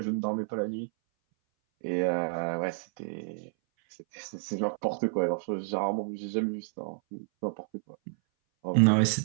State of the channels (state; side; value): silent; left; 58 dB below the other